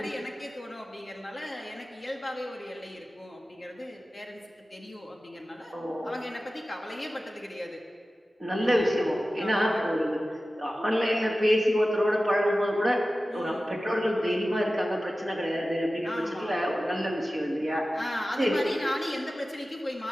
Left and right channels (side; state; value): both; normal; correlation 0.95